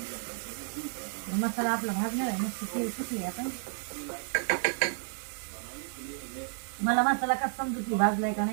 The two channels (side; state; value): left; silent; digital silence